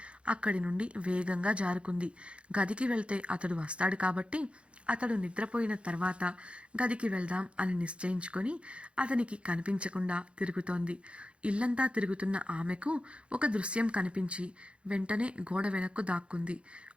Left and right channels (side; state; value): left; late; 0.059 ms